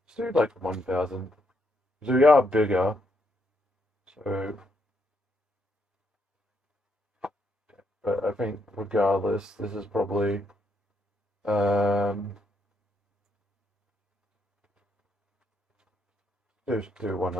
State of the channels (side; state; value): both; normal; correlation 0.76